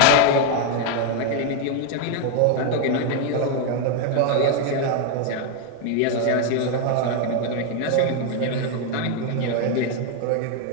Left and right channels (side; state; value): both; different; correlation 0.01